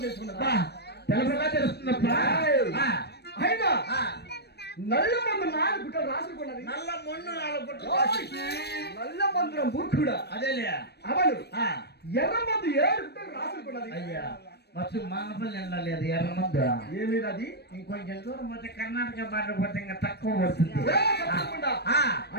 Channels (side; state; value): right; late; 0.47 ms